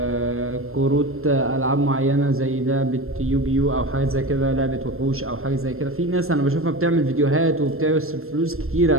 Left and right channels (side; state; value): left; late; 0.62 ms